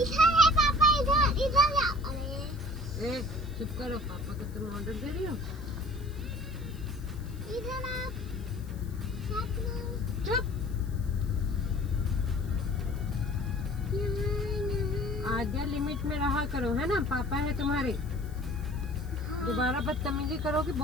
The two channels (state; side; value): noise; left; hiss, 25 dB below the sound